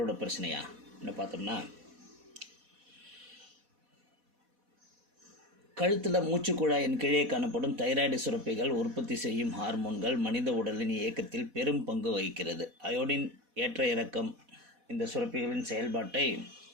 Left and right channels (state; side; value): late; left; 4.1 ms